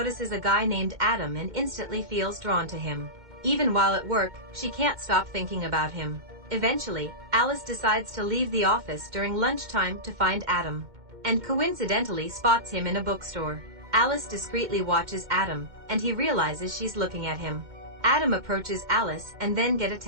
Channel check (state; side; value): late; left; 2.1 ms